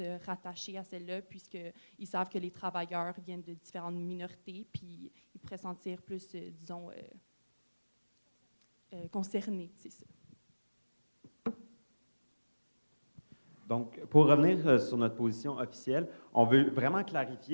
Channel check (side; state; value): both; inverted; correlation -1.00